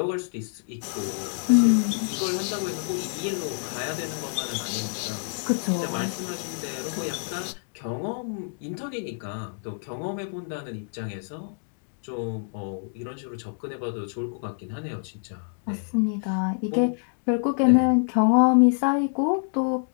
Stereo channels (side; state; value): right; silent; 60 dB below the other